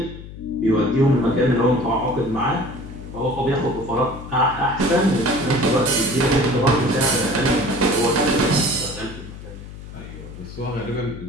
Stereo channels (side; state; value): left; noise; hum, 13 dB below the sound